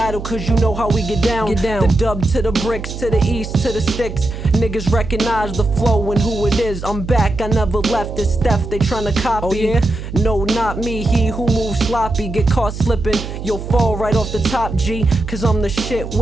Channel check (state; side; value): noise; right; hum, 9 dB below the sound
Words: cause you know how we get down. The dub to the bricks, to the east, to the sticks. Niggas recognize the flow and who it is. I'm back, I never left. It's Steph, they tryna copy. Oh, yeah? No, not me, he who moves sloppy. Get caught slipping, you'll fall right off the top, G. Cause I'm the shit,